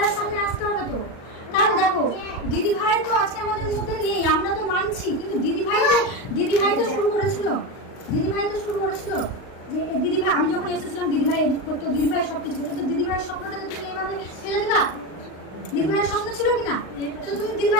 সামনে আসতে হবে তো। কারণ দেখো দিদিভাই তো আজকে আমাদের মধ্যে নেই, আমরা তো মানছি, কিন্তু দিদিভাই তো শুরু করেছিল। যে দিদিভাই, আমি যখন এসেছিলাম দিদিভাই এডিট করতো, দিদিভাই সবকিছু করতো। তো দিদিভাইয়ের স্বপ্নটাকে তুমি এইভাবে ফেলে দিবা? দিদিভাইয়ের স্বপ্ন ছিল কিনা? তো তুমি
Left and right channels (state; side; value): late; right; 39 ms